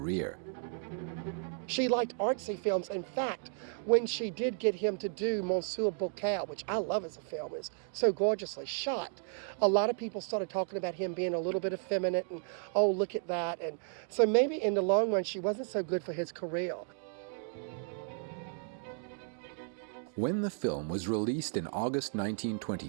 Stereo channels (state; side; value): silent; left; 55 dB below the other